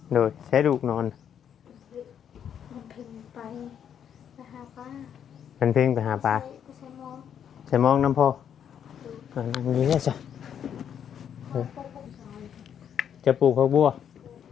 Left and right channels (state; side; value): quieter; right; 8.7 dB